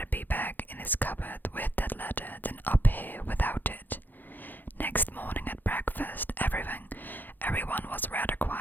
be back in his cupboard with that letter than up here without it. Next morning at breakfast, everyone was rather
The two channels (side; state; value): right; late; 0.088 ms